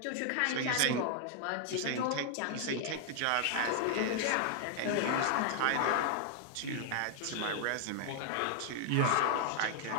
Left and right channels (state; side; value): different; both; correlation 0.00